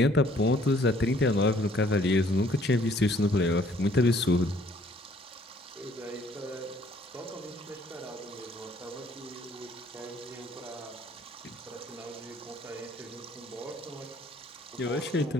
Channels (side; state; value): both; normal; correlation 0.61